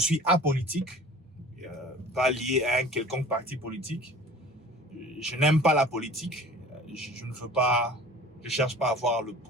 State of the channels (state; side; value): normal; both; correlation 0.44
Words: apolitique, pas lié à un quelconque parti politique. Je n'aime pas la politique. Je ne veux pas, je cherche pas à avoir le